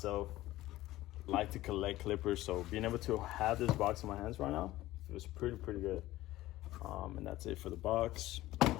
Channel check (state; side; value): quieter; right; 16.3 dB